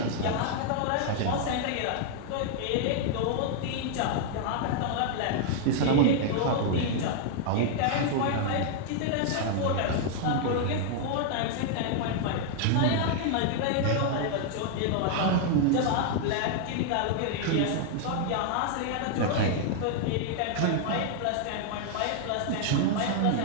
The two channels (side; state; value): both; different; correlation 0.00